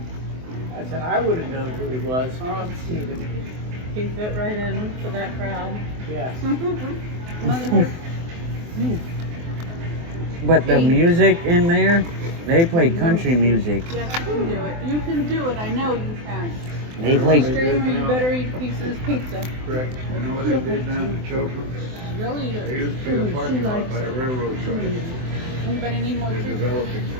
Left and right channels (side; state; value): left; late; 24 ms